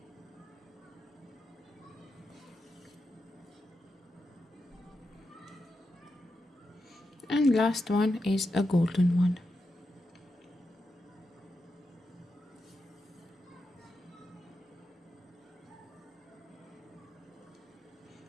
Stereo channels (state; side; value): normal; both; correlation 0.88